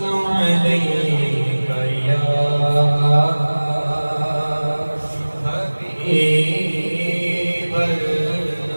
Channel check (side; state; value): both; inverted; correlation -1.00